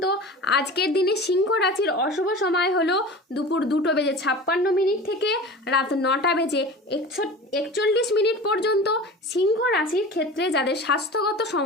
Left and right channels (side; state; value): both; normal; correlation 0.35